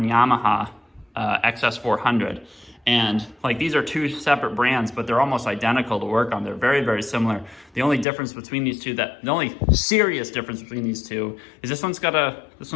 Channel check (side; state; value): right; drops out; at 8.1 s